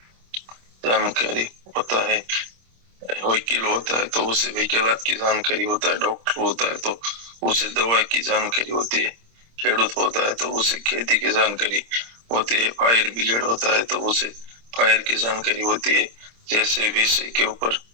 जानकारी होता है। वकील होता है तो उसे वकीलात की जानकारी होता है, डॉक्टर होता है तो उसे दवा की जानकारी होती है, खेडूत होता है तो उसे खेती की जानकारी होती है, फायर ब्रिगेड होता है तो उसे फायर की जानकारी होती है। जैसे विषय के ऊपर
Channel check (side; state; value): left; late; 26 ms